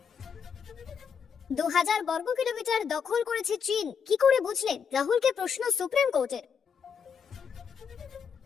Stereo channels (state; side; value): quieter; right; 6.7 dB